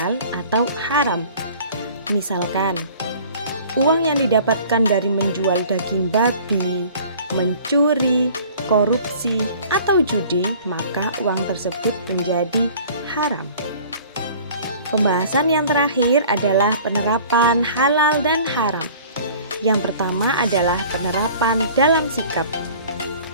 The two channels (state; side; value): inverted; both; correlation -0.48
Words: atau haram. Misalkan, uang yang didapatkan dari menjual daging babi, mencuri, korupsi, atau judi, maka uang tersebut menjadi haram. Pembahasan yang terakhir adalah penerapan halal dan haram. Yang pertama adalah penerapan dalam sikap.